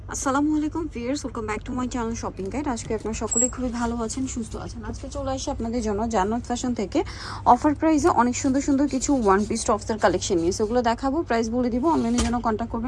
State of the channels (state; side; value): identical; both; correlation 1.00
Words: আসসালামু আলাইকুম viewers, welcome back to my channel shopping guide. আজকে আপনারা সকলেই খুবই ভালো আছেন, সুস্থ আছেন। আজকে চলে আসি আপনাদের জন্য জান্নাত ফ্যাশন থেকে অফার প্রাইসে অনেক সুন্দর সুন্দর কিছু ওয়ান পিস টপসের কালেকশন নিয়ে সেগুলো দেখাবো, প্রাইস বলে দিব। অনলাইনের জন্য কন্ট্যাক্ট